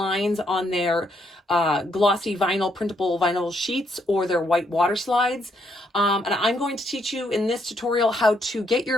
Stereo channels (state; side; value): normal; both; correlation 0.74